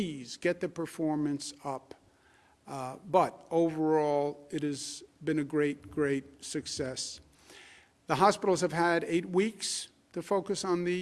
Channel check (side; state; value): both; identical; correlation 1.00